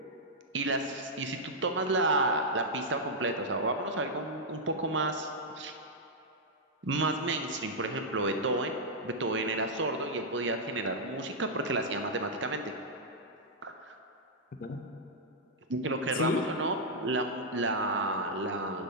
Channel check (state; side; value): normal; both; correlation -0.06